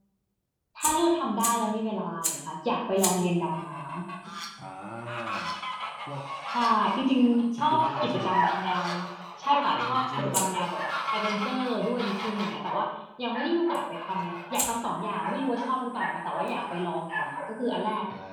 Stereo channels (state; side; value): identical; both; correlation 1.00